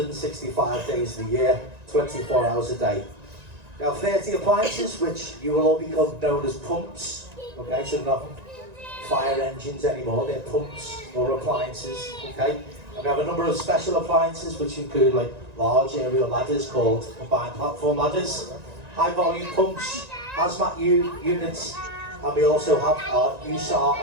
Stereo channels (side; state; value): left; late; 1.9 ms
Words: days of the year, 24 hours a day. We have 30 appliances, which you will all become known as pumps. Okay, so they're not fire engines anymore, they're pumps or appliances. Okay, and we have a number of special appliances, which include like large aerial ladders called combined platform ladders, high volume pumps, hazmat units, and we also have our USAR